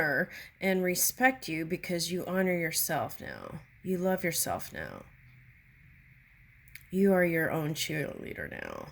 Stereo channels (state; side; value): identical; both; correlation 1.00